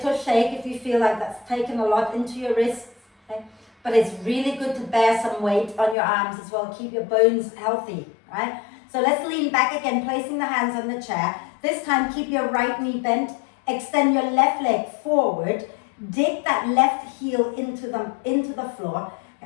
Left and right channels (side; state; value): right; drops out; at 6.0 s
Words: shake if you feel like that's taken a lot into your wrists. Okay? But it's really good to bear some weight on your arms as well. Keep your bones healthy, right? So let's lean back again, placing the hands on the chair. This time, keep your right knee bent. Extend your left leg forward. Dig that left heel into the floor.